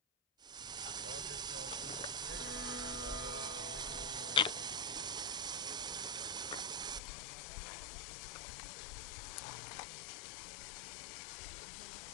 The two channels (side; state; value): right; drops out; at 7.0 s